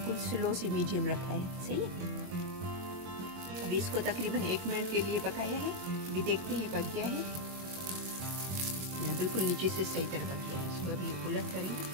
स्लो से मीडियम रखा है, सही है। अभी इसको तकरीबन 1 मिनट के लिए पकाया है। अभी देखते हैं पक गया है, बिल्कुल नीचे से सही तरह पक गया है। इसको अभी उलट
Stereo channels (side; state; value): left; late; 22 ms